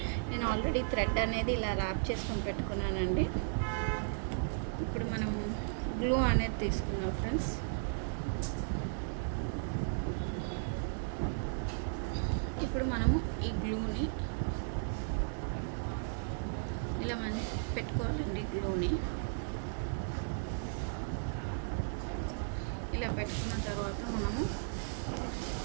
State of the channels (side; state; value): left; silent; 54 dB below the other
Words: నేను ఆల్రెడీ థ్రెడ్ అనేది ఇలా ర్యాప్ చేసుకొని పెట్టుకున్నానండి. ఇప్పుడు మనం గ్లూ అనేది తీసుకున్నాం ఫ్రెండ్స్. ఇప్పుడు మనము ఈ గ్లూని ఇలా మనం పెట్టుకోవాలండి. గ్లూని ఇలా పెట్టుకున్న తర్వాత మనము